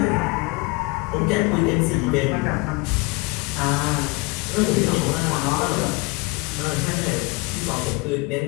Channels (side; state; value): right; quieter; 25.9 dB